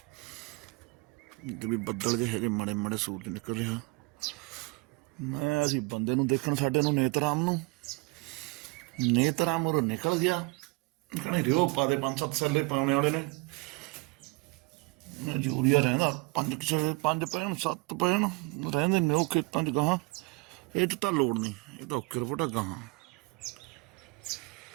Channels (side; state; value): left; quieter; 27.2 dB